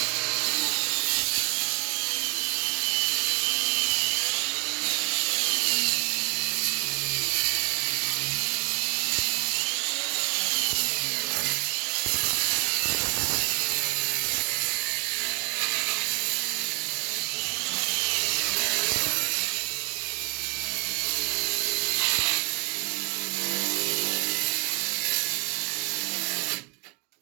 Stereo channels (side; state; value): left; quieter; 33.1 dB